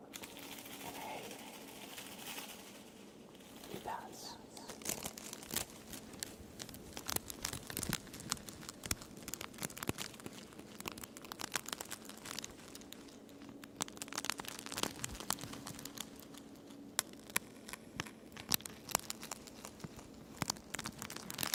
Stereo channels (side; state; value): both; identical; correlation 1.00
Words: And hey, you pass.